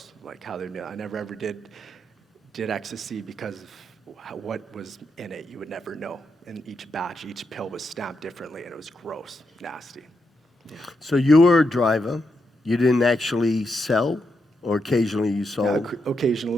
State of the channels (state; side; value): normal; both; correlation 0.83